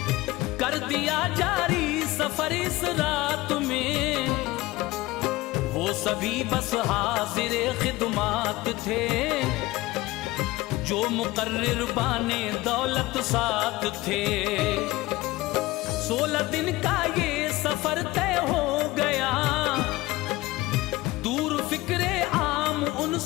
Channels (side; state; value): right; quieter; 19.3 dB